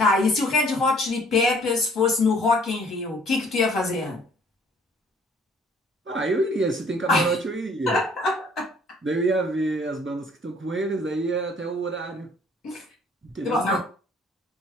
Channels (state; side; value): normal; both; correlation 0.58